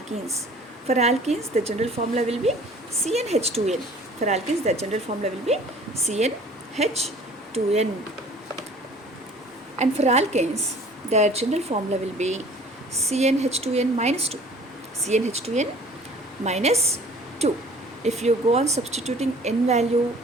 For alkenes, the general formula will be CnH2n. And for alkanes, their general formula will be CnH2n minus 2. If you go on substituting N value,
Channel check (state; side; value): normal; both; correlation 0.50